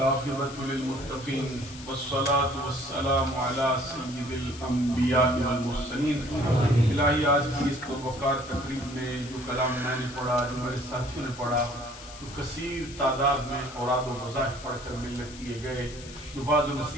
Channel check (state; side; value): noise; left; hiss, 16 dB below the sound